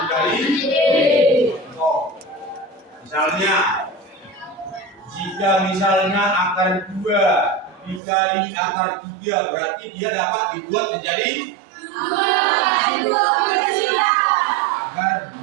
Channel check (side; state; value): left; drops out; at 8.0 s